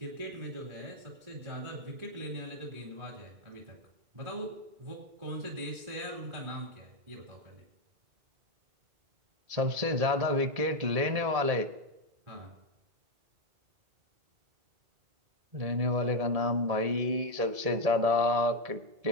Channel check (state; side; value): late; left; 1.7 ms